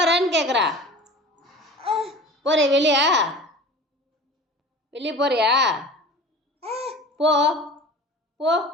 கேட்குறா. போறியா வெளியா? வெளியே போறியா? போ போ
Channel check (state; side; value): normal; both; correlation 0.39